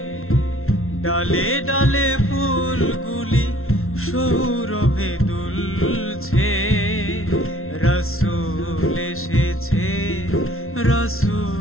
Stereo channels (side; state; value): right; late; 0.62 ms